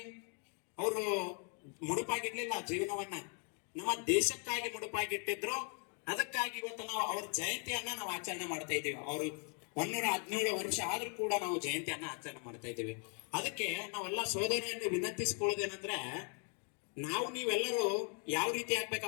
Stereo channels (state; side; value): quieter; right; 39.3 dB